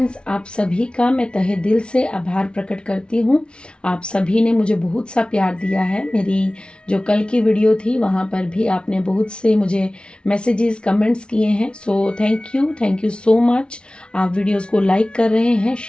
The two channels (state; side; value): late; right; 0.057 ms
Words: आप सभी का मैं तहे दिल से आभार प्रकट करती हूँ। आप सभी ने मुझे बहुत सा प्यार दिया है। मेरी जो कल की वीडियो थी वहाँ पर भी आपने बहुत से मुझे मैसेजेस, कमेंट्स किए हैं। So thank you so much. आप वीडियोस को लाइक कर रहे हैं,